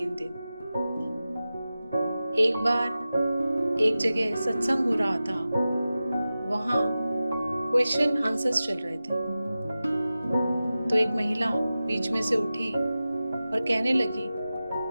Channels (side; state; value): both; inverted; correlation -0.95